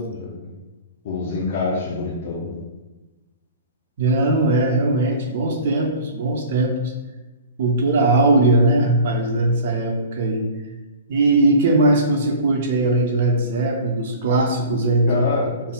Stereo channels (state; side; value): inverted; both; correlation -0.41